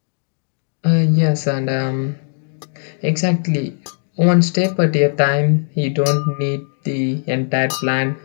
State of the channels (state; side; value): silent; right; digital silence